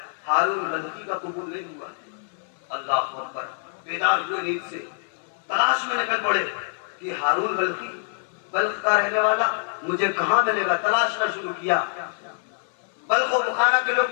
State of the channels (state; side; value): silent; right; 62 dB below the other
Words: ہارون بلخی کا قبول نہیں ہوا ہے. اللہ اکبر. بیدار ہوئے نیند سے, تلاش میں نکل پڑے کہ ہارون بلخی, بلخ کا رہنے والا, مجھے کہاں ملے گا. تلاشنا شروع کیا. بلخ و بخارا کے لوگ